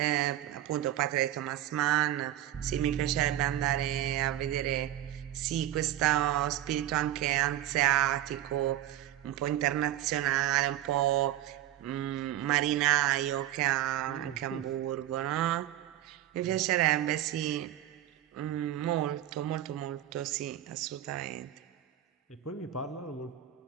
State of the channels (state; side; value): quieter; left; 12.8 dB